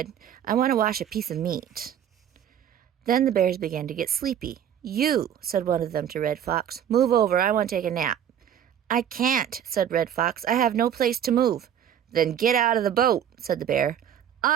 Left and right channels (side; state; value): left; quieter; 9.6 dB